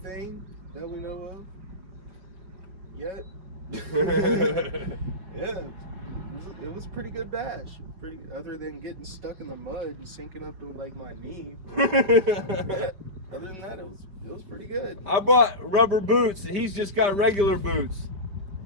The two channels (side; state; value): left; late; 5.6 ms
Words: that we know of yet. Yeah, it was a pretty good bash. Other than getting stuck in the mud and sinking up to like my knee. Yeah, other than that, it was pretty good. I bought rubber boots. He's just got regular boots.